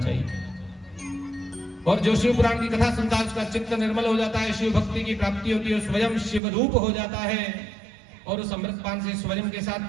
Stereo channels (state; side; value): drops out; left; at 6.4 s